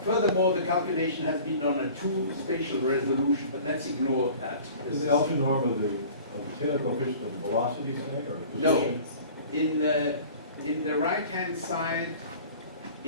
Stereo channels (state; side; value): inverted; both; correlation -0.45